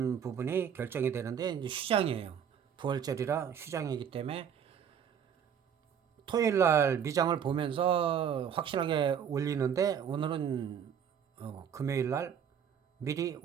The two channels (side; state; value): left; quieter; 8.1 dB